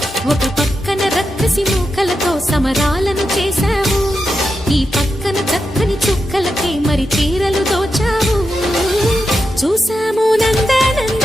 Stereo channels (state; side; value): normal; both; correlation 0.88